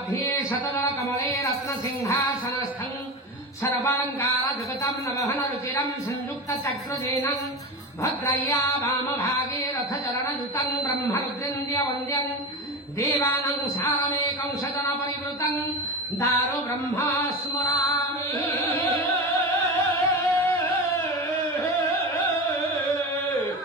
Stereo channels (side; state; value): both; normal; correlation 0.24